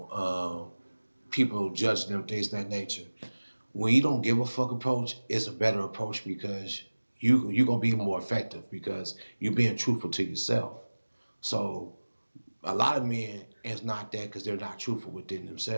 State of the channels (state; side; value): inverted; both; correlation -1.00